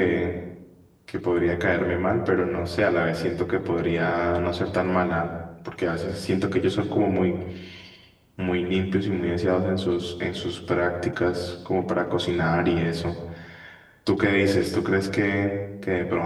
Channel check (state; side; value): identical; both; correlation 1.00